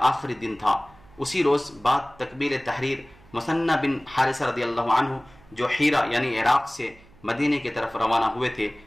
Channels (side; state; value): right; noise; hum, 26 dB below the sound